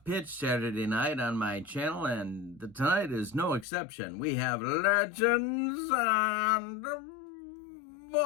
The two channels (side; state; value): right; drops out; at 3.7 s